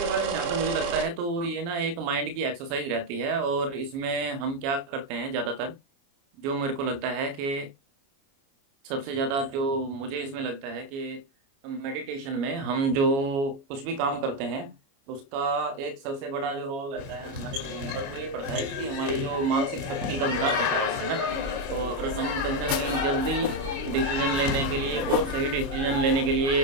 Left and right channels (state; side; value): late; left; 29 ms